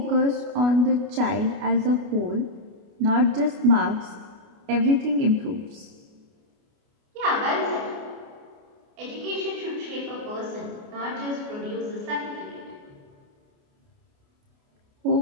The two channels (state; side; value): late; left; 29 ms